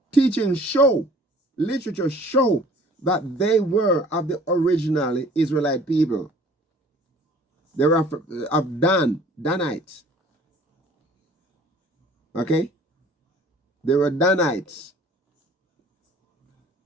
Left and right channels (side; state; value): both; normal; correlation 0.51